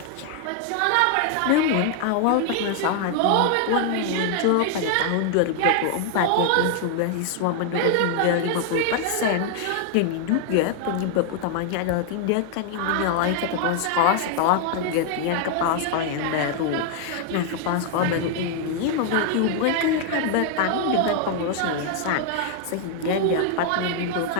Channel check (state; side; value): different; both; correlation 0.00